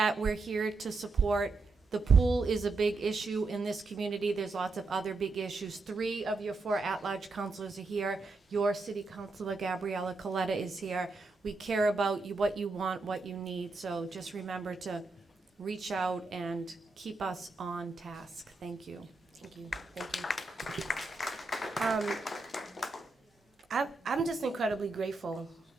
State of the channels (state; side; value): quieter; left; 3.6 dB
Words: we're here to support. The pool is a big issue in this community. There's lots of other big issues. 3 of your 4 at-large councilors are here. Your city councilor, Gabriella Coletta, is here. We care about you, what you want, what you need. So just remember to reach out and keep us on task. Thank you. Thank you. Thank you. I'm just incredibly grateful